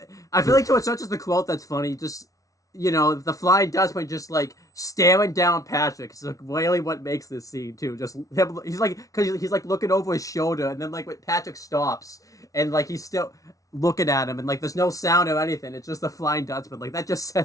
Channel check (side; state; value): right; late; 0.17 ms